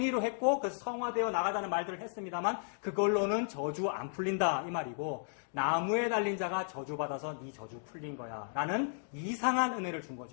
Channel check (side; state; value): right; silent; digital silence